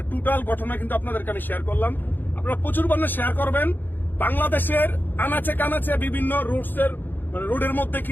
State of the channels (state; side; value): late; right; 0.091 ms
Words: টোটাল ঘটনা কিন্তু আপনাদেরকে আমি শেয়ার করলাম। আপনারা প্রচুর পরিমাণে শেয়ার করবেন। বাংলাদেশের আনাচে কানাচে বিভিন্ন রোডের মধ্যে